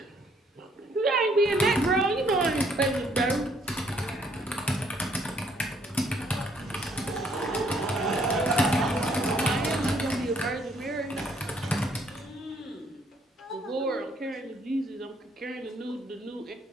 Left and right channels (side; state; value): both; normal; correlation 0.67